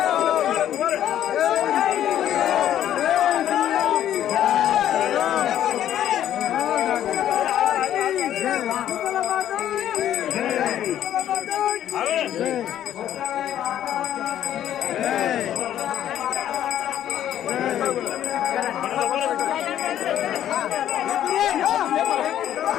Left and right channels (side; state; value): right; quieter; 11.2 dB